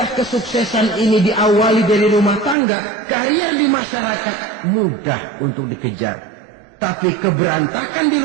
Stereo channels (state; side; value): drops out; left; at 2.6 s